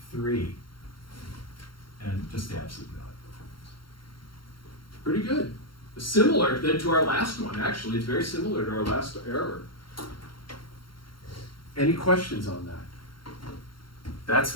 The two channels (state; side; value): late; right; 0.73 ms